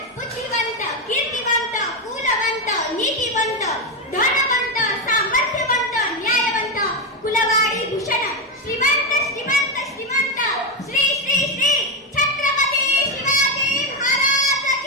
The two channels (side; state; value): both; normal; correlation 0.09